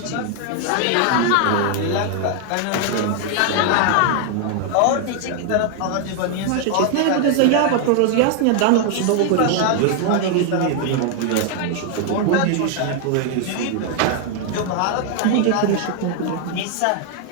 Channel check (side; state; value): both; different; correlation 0.00